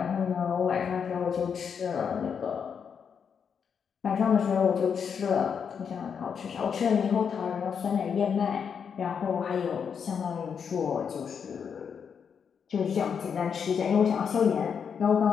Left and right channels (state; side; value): quieter; right; 6.9 dB